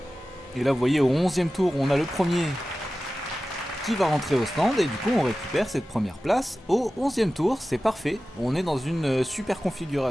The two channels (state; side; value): normal; both; correlation 0.95